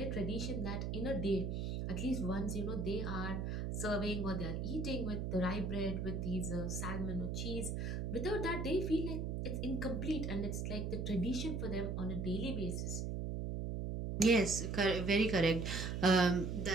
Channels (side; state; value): right; noise; hum, 2 dB below the sound